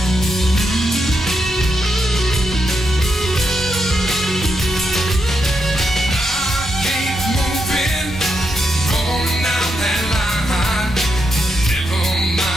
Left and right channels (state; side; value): normal; both; correlation 0.83